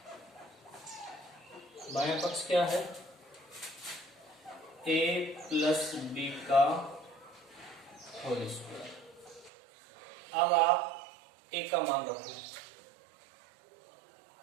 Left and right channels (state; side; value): drops out; left; at 9.5 s